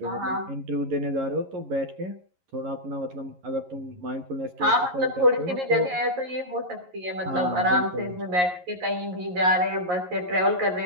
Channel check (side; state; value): left; late; 11 ms